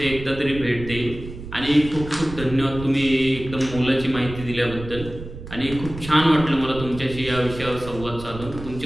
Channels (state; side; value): noise; right; rumble, 12 dB below the sound